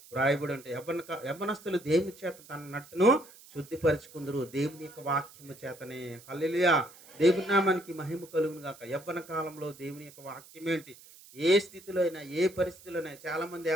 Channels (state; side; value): noise; right; hiss, 21 dB below the sound